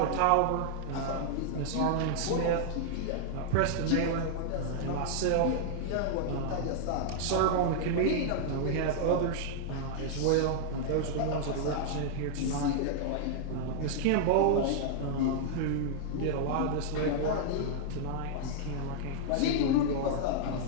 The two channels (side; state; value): both; different; correlation -0.01